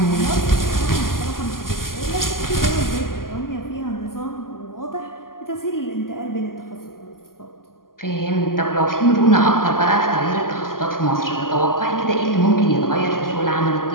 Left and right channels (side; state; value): right; late; 0.91 ms